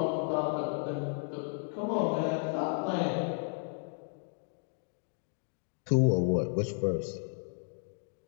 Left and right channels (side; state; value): right; silent; 55 dB below the other